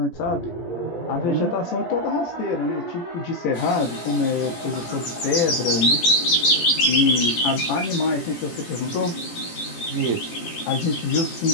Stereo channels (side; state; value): right; late; 17 ms